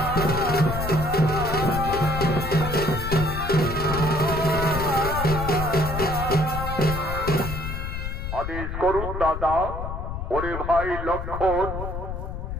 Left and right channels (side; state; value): left; noise; rumble, 5 dB below the sound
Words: আদেশ করুন দাদা। ওরে ভাই লক্ষ্মণ,